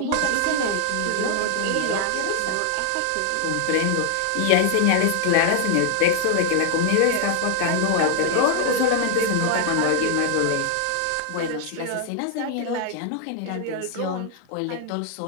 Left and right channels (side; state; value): both; different; correlation 0.00